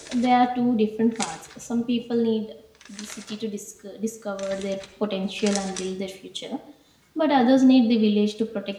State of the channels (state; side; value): identical; both; correlation 1.00